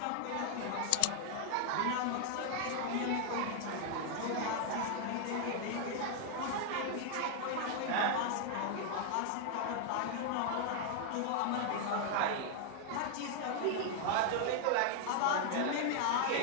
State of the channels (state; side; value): different; both; correlation 0.00